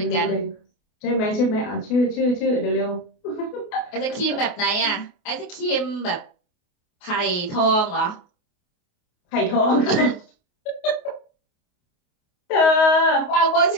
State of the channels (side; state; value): right; late; 28 ms